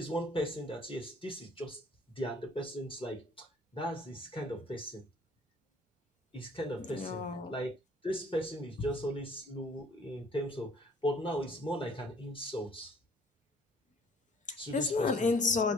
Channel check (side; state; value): both; normal; correlation 0.57